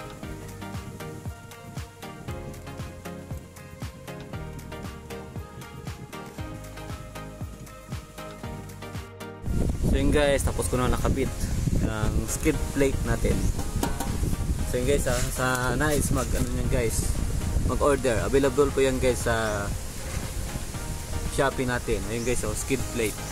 So yun guys, tapos ko na nakabit ang skid plate natin. So yun guys, sa nais mag order, available po yan guys sa Shopee natin. Ayun guys, skid plate.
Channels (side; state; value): both; identical; correlation 1.00